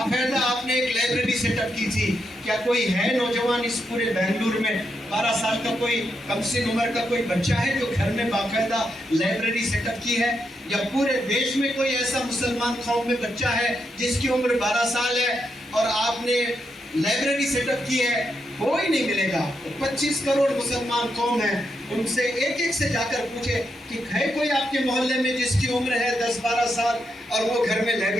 آپ نے ایک لائبریری سیٹ اپ کی تھی. کیا کوئی ہے نوجوان اس پورے بنگلور میں 12 سال کا کوئی کم سن عمر کا کوئی بچہ ہے جو گھر میں باقاعدہ لائبریری سیٹ اپ کی ہے؟ یا پورے دیش میں کوئی ایسا مسلمان قوم میں بچہ ہے جس کی عمر 12 سال ہے اور آپ نے لائبریری سیٹ اپ کی ہے؟ کوئی نہیں ملے گا. 25 کروڑ مسلمان قوم ہے, ان سے ایک ایک سے جا کر پوچھے کہ ہے کوئی آپ کے محلے میں جس کی عمر ہے 10-12 سال اور وہ گھر میں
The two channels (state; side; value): normal; both; correlation 0.82